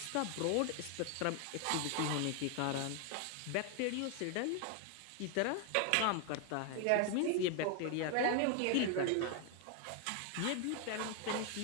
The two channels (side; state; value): both; different; correlation 0.01